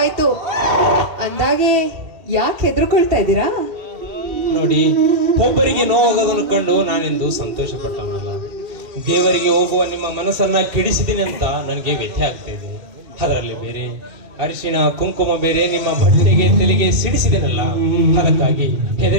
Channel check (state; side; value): late; left; 2.7 ms